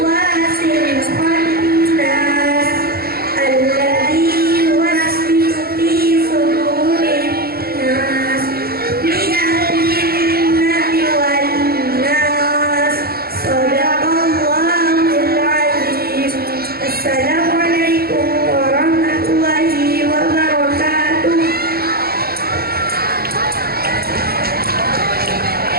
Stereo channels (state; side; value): late; left; 0.45 ms